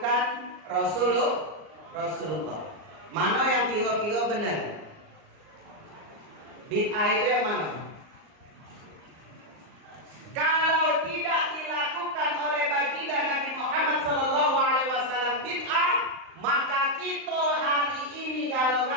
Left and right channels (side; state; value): left; late; 38 ms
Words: Rasulullah. Mana yang kira-kira benar? Bid'ah itu yang mana? Kalau tidak dilakukan oleh baginda Nabi Muhammad Sallallahu Alaihi Wasallam bid'ah, maka kita hari ini